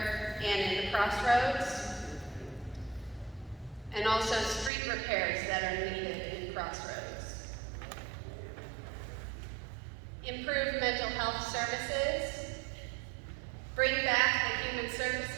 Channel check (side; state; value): left; drops out; at 4.7 s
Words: and in the crossroads. And also street repairs that are needed in crossroads. Improve mental health services. Bring back the Human